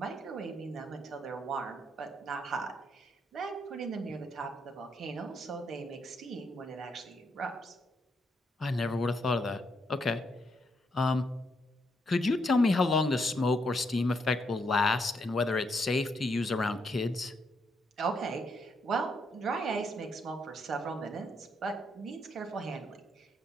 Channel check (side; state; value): both; normal; correlation 0.77